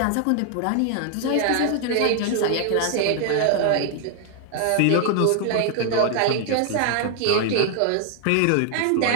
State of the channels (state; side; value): different; both; correlation 0.00